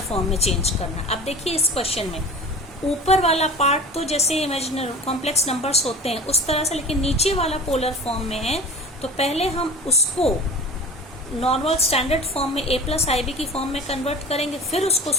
फॉर्म में चेंज करना है। अब देखिए इस क्वेश्चन में ऊपर वाला पार्ट तो जैसे इमेजिनरी कॉम्प्लेक्स नंबर्स होते हैं उस तरह से, लेकिन नीचे वाला पोलर फॉर्म में है, तो पहले हम उसको नॉर्मल स्टैंडर्ड फॉर्म में a प्लस आई बी की फॉर्म में कन्वर्ट करेंगे, फिर उसको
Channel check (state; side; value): normal; both; correlation 0.37